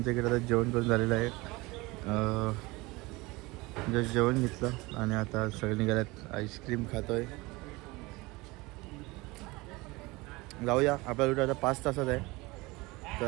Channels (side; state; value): left; quieter; 22.9 dB